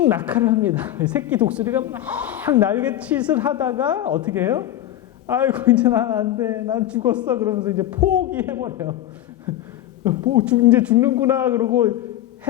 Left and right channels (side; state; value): right; quieter; 13.0 dB